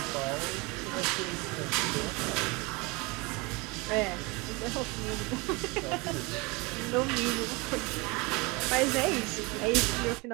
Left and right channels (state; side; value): quieter; left; 26.6 dB